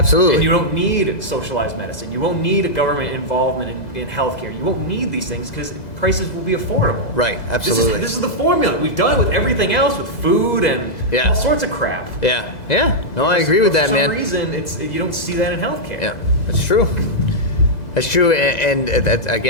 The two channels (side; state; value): right; late; 2.0 ms